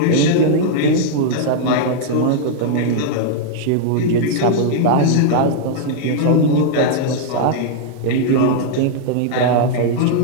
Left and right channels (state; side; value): different; both; correlation -0.01